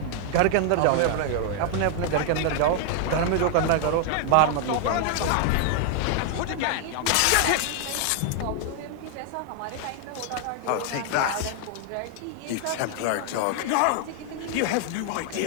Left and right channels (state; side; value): different; both; correlation 0.00